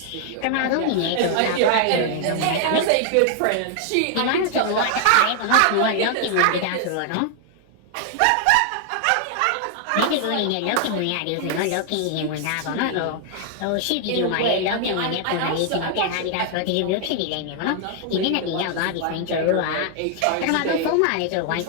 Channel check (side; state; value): both; different; correlation 0.00